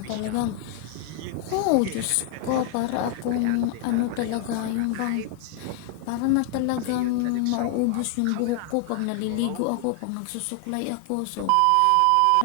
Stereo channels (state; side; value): different; both; correlation 0.00